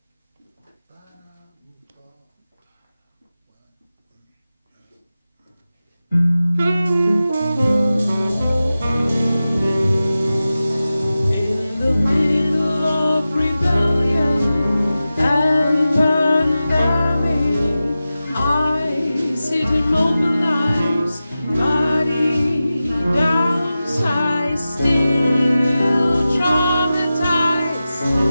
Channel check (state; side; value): inverted; both; correlation -0.94